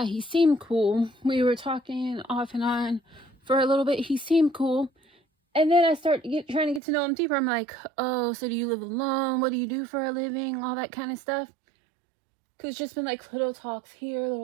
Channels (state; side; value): drops out; left; at 6.8 s